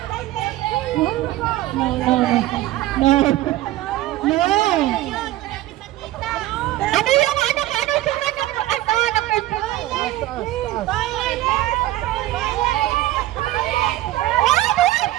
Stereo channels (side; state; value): left; quieter; 15.8 dB